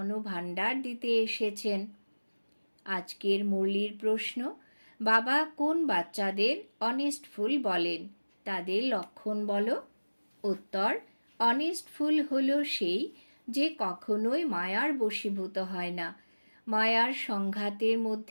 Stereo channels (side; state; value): both; inverted; correlation -1.00